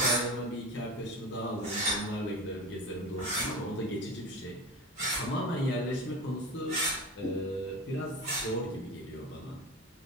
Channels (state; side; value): normal; both; correlation 0.29